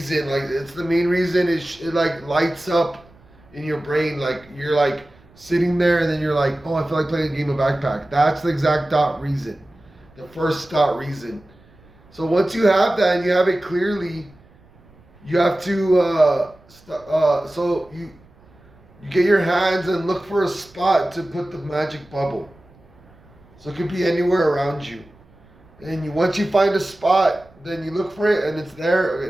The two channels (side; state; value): right; noise; rumble, 28 dB below the sound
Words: Like it's the main reason. It like lights up in your brain. Like you're like sitting there and then you're like, oh, I feel like playing a game of backpack. That's the exact dot reason. The first dot reason. So once you have that and you have it clearly, you have to so you get your hands and look for a spot to put the magic bubble. So it could be anywhere around you. And once you find a spot, then you look for it and it's there.